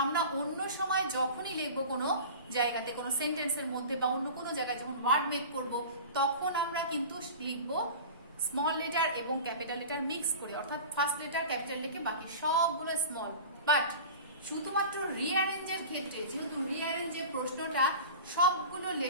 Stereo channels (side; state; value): both; inverted; correlation -0.36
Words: আমরা অন্য সময় যখনই লিখবো কোনো জায়গাতে, কোনো সেন্টেন্সের মধ্যে বা অন্য কোনো জায়গায় যখন ওয়ার্ড মেক করব, তখন আমরা কিন্তু লিখবো স্মল লেটার এবং ক্যাপিটাল লেটার মিক্স করে, অর্থাৎ ফার্স্ট লেটার ক্যাপিটাল লিখে বাকি সবগুলো স্মল। বাট শুধুমাত্র রিঅ্যারেঞ্জের ক্ষেত্রে, যেহেতু রিঅ্যারেঞ্জের প্রশ্নটা সবগুলো